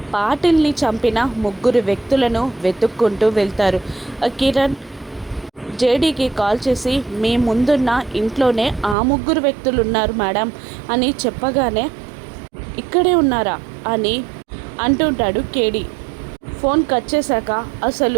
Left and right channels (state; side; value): drops out; left; at 9.0 s